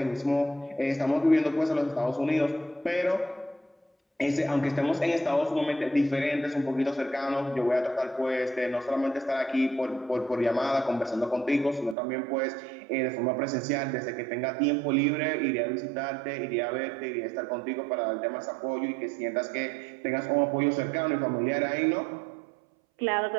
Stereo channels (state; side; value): drops out; left; at 12.0 s